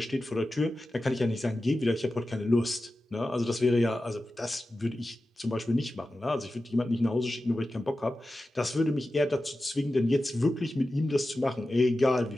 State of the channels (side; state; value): both; normal; correlation 0.93